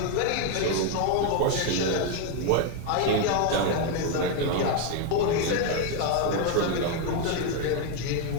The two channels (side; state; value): both; different; correlation 0.01